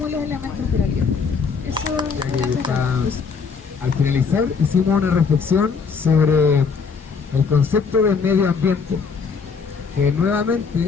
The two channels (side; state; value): right; quieter; 5.4 dB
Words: de los elementos de la vida. Eso Ya era que está- todo. Al finalizar hicimos una reflexión sobre el concepto del medio ambiente, que